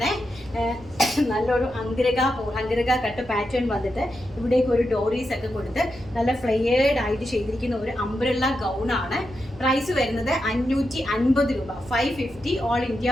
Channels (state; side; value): noise; right; rumble, 20 dB below the sound